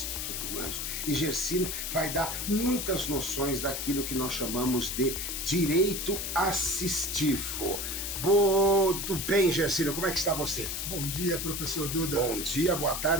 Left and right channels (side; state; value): left; noise; hiss, 3 dB below the sound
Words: Humanos e Gersino vai dar muitas noções daquilo que nós chamamos de direito assistivo. Tudo bem, Gersino? Como é que está você? Bom dia, professor Duda. Bom dia, boa